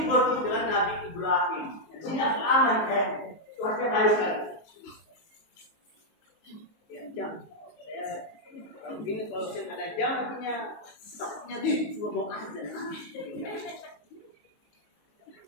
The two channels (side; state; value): right; late; 19 ms